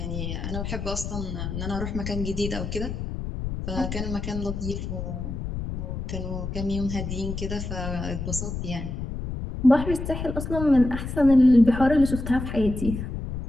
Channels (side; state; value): left; noise; rumble, 5 dB below the sound